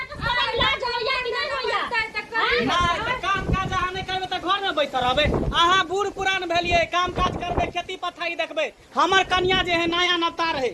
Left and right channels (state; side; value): identical; both; correlation 1.00